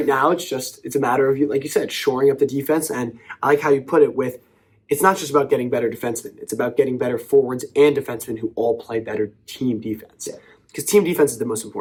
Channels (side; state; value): both; identical; correlation 1.00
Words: now, it's a matter of, like you said, shoring up the defense. And I like how you put it with, it's not just about getting better defensemen. It's about getting better forwards and defensemen who all play better team defense. Because team defense is the most